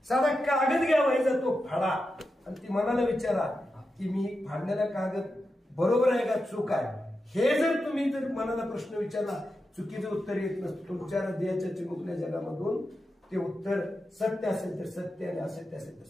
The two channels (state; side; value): normal; both; correlation 0.89